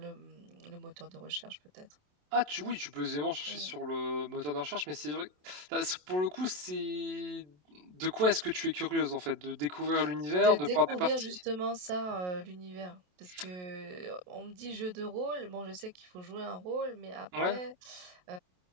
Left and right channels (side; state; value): left; late; 27 ms